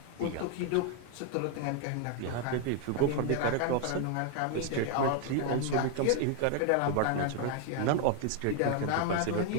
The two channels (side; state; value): both; different; correlation 0.00